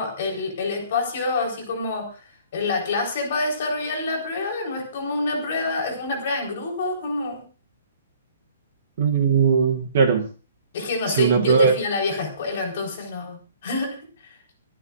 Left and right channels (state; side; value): inverted; both; correlation -0.56